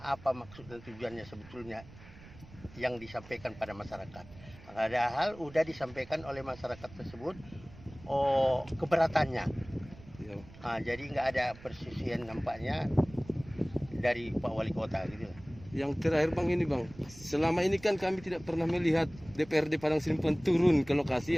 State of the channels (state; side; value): noise; right; rumble, 20 dB below the sound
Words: apa maksud dan tujuannya sebetulnya yang disampaikan pada masyarakat. Padahal udah disampaikan oleh masyarakat tersebut keberatannya. Ya. Jadi nggak ada persisian nampaknya dari Pak Wali Kota gitu. Yang terakhir Bang ini Bang, selama ini kan kami tidak pernah melihat DPRD Padang Sidimpuan turun ke